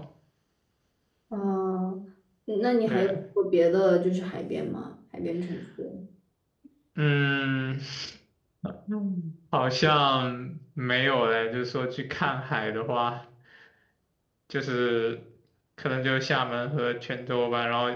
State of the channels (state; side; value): identical; both; correlation 1.00